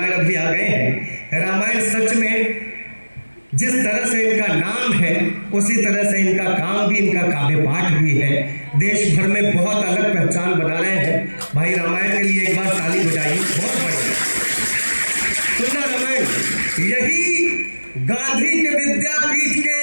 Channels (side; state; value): both; inverted; correlation -1.00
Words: अभी आ गए हैं। रामायण सच में जिस तरह से इनका नाम है उसी तरह से इनका काम भी, इनका काव्य पाठ भी है। देश भर में बहुत अलग पहचान बना रहे हैं। भाई रामायण के लिए एक बार ताली बजाइए, बहुत बढ़िया। सुना रामायण, यही गांधी के विद्यापीठ